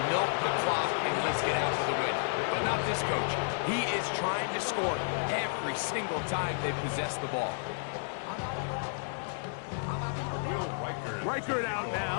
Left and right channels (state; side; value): silent; right; digital silence